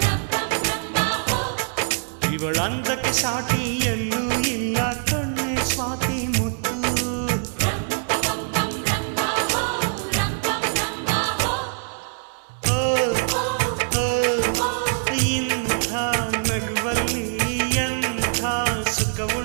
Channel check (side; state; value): left; silent; digital silence